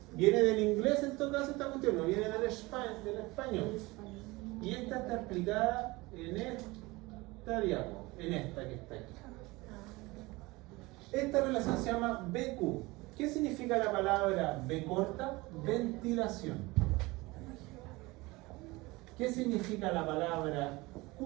Viene del inglés en todo caso esta cuestión, no viene del español. Y esta está explicada en esta diapo, en esta que está aquí. Esta relación se llama BQ. ¿Qué significa la palabra B corta? Ventilación. ¿Qué significa la palabra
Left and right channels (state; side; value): quieter; left; 22.2 dB